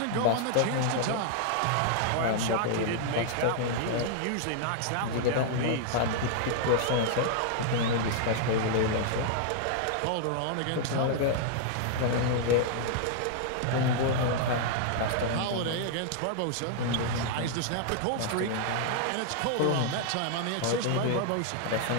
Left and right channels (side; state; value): both; different; correlation -0.01